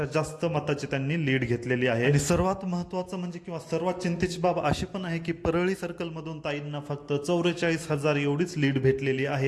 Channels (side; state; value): both; identical; correlation 1.00